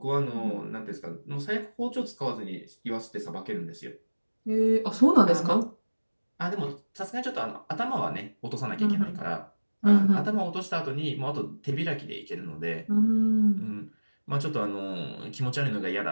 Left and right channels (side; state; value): both; inverted; correlation -1.00